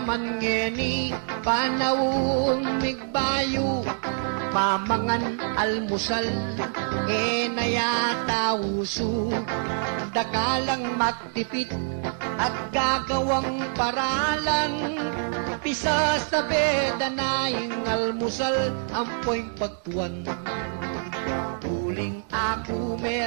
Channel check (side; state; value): left; silent; digital silence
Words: ngeni, panawong migbayo, mamangan almusal, nayata uso, dakalang magtipid, at gagawang paralan, pisa sa beda na ing almusal, ampoy pagtuan. Uling ako